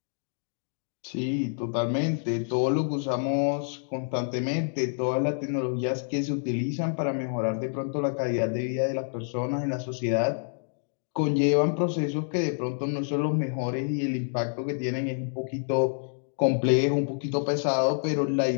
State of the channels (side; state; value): right; silent; digital silence